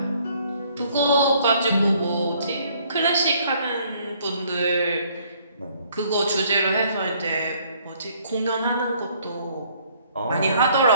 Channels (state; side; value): inverted; both; correlation -0.63